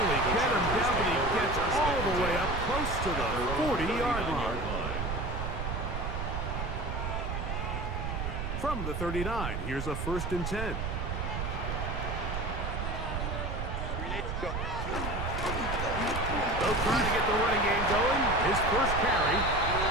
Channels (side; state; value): right; noise; rumble, 3 dB below the sound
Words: get him down, but he gets all the way up close to the 40-yard line. From the 39, here's a 1st and 10. They'll try to get the running game going. His first carry,